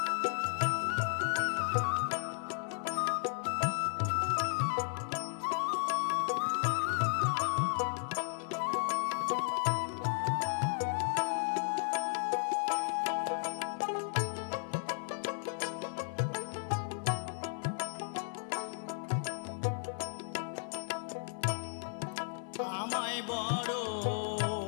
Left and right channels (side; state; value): right; silent; 55 dB below the other